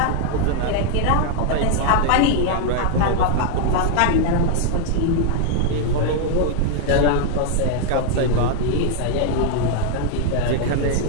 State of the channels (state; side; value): different; both; correlation 0.00